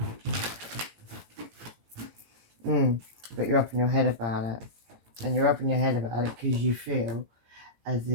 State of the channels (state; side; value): late; left; 17 ms